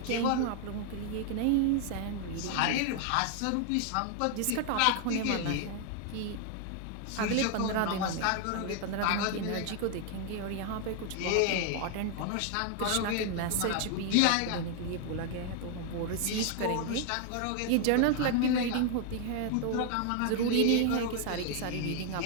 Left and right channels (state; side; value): different; both; correlation 0.00